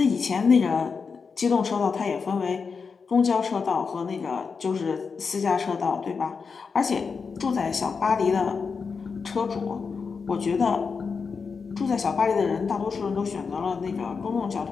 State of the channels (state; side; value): quieter; right; 5.3 dB